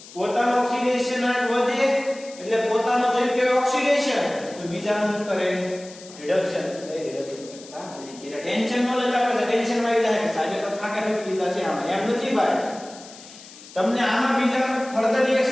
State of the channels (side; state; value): left; noise; hiss, 19 dB below the sound